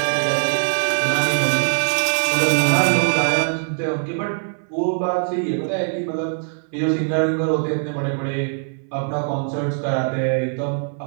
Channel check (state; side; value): silent; left; 61 dB below the other